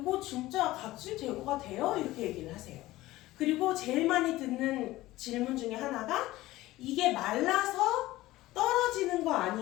진짜 각질 제거가 돼요? 이렇게 얘기를 하세요. 그리고 제일 많이 듣는 질문 중에 하나가 이게 말라서 떨어지는 거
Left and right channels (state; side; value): quieter; right; 17.3 dB